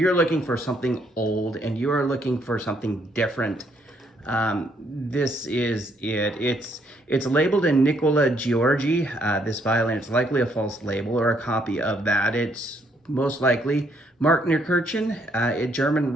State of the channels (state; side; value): normal; both; correlation 0.70